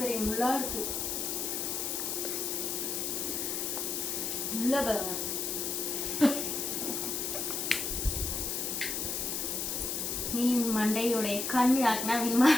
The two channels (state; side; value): noise; left; hiss, 1 dB below the sound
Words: முள்ளா இருக்கு. முள்ள பாருங்க. மீன் மண்டையோடைய கண் யாருக்குன்னா வேணுமா?